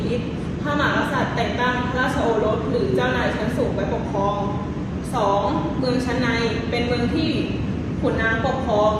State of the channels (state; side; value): identical; both; correlation 1.00